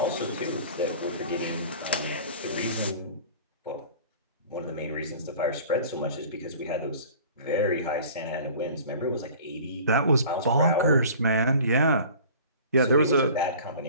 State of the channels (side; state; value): both; inverted; correlation -0.44